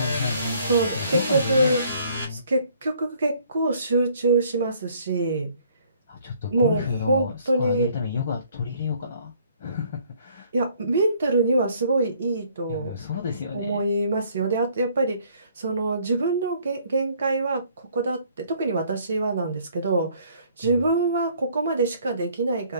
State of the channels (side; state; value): both; inverted; correlation -0.61